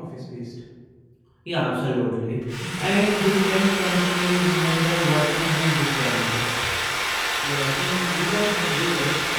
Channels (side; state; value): both; identical; correlation 1.00